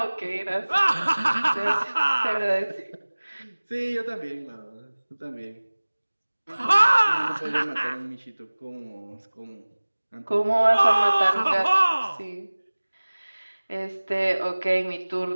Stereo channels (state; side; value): inverted; both; correlation -1.00